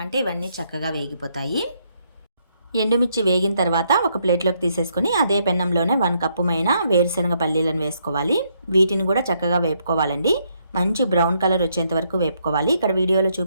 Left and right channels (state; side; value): inverted; both; correlation -0.74